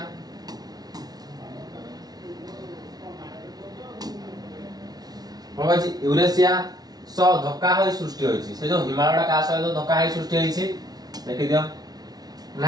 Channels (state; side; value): late; left; 0.19 ms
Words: कोन कहछि यूरेशिया स धक्का होई सृष्टि होइछि से जो हिमालयटा का सहित धक्का होई सृष्टि होइछि देखि दियो